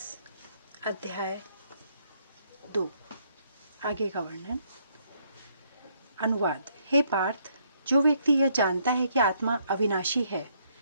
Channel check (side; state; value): both; inverted; correlation -0.70